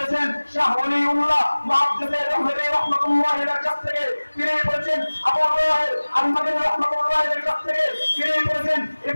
শাহ ওলিউল্লাহ মুহাদ্দিস দেহলভী রাহমাতুল্লাহি আলাইহির কাছ থেকে। তিনি বলেছেন আবু তাহের আল-মাদানী রাহমাতুল্লাহি আলাইহির কাছ থেকে। তিনি বলেছেন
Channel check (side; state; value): both; inverted; correlation -1.00